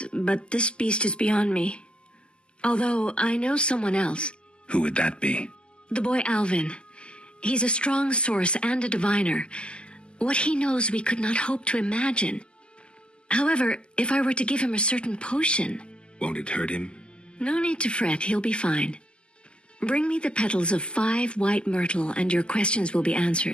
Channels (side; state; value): right; late; 0.050 ms